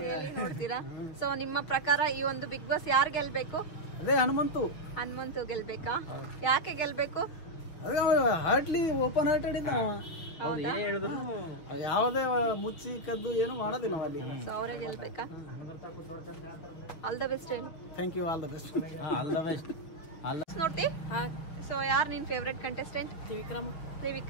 ನೋಡ್ತೀರಾ? ಸೊ ನಿಮ್ಮ ಪ್ರಕಾರ ಈ ಒಂದು ಬಿಗ್ ಬಾಸ್ ಯಾರು ಗೆಲ್ಬೇಕು? ಅದೇ ಹನುಮಂತು ಗೆಲ್ಬೇಕಾ? ಯಾಕೆ ಗೆಲ್ಬೇಕು? ಅದೇ ಹಾರ್ಟ್ಲಿ ಓಪನ್ ಹಾರ್ಟೆಡ್ ಇದ್ದ. ಹೌದಾ? ಯಾವುದೇ ಮುಚ್ಚಿ ಕದ್ದು ಏನು ಮಾಡೋದಿಲ್ಲ ಅಲ್ಲಿ. ಸೊ ಅವರೇ ಗೆಲ್ಬೇಕಾ? ಆಲ್ ದ ಬೆಸ್ಟ್ ಹೇಳಿ. Thank you. All the best. ನೋಡ್ತಿ? ಸೊ ಯಾರು ನಿನ್ ಫೇವ್ರೆಟ್ ಕಂಟೆಸ್ಟೆಂಟ್?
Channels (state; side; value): late; right; 6.1 ms